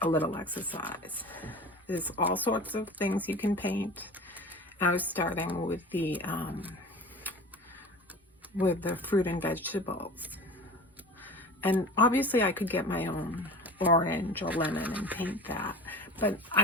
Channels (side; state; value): both; normal; correlation 0.36